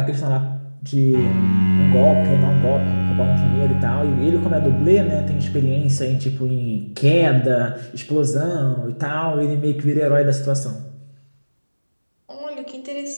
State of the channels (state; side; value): inverted; both; correlation -1.00